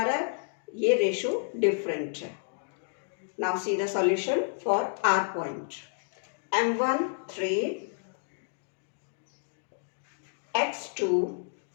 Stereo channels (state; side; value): silent; right; digital silence